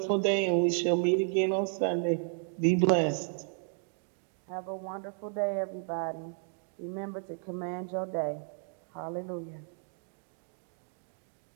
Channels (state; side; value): silent; left; 56 dB below the other